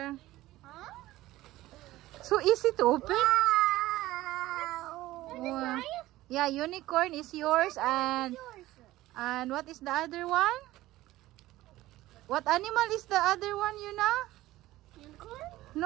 Huh? So easy to open. Wow. Yeah, unicorn is yours, and Yours. what is the other one? What animal is the other one, Yuna? Unicorn?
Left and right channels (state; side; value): quieter; left; 16.6 dB